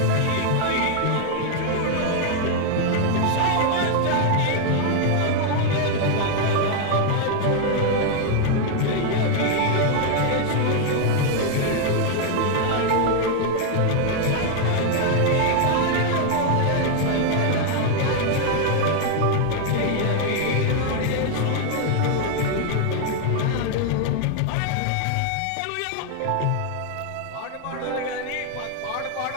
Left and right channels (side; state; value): both; different; correlation 0.00